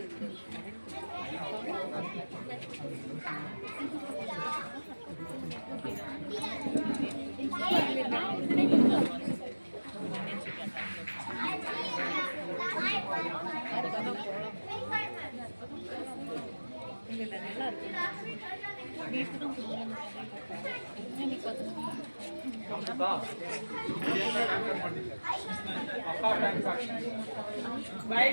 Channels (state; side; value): inverted; both; correlation -1.00